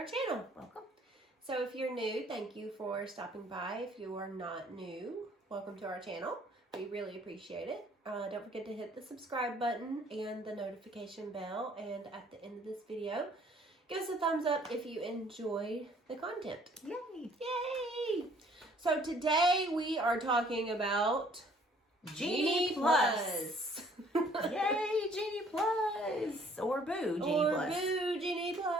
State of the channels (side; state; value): both; normal; correlation 0.59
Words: channel. Welcome. So if you're new, thank you for stopping by. If you are not new, welcome to our channel. We really appreciate it. Don't forget to hit the subscribe button and the notification bell. And at the end of this video, give us a thumbs up if you enjoy the content. Yay! Yay! So today we are talking about Genie Plus. Yay, Genie Plus. Or boo, Genie Plus. Or boo, Genie